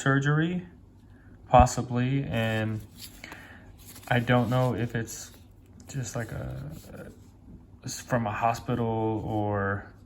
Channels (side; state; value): both; identical; correlation 1.00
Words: possibly, and I don't know if it's just like from a hospital or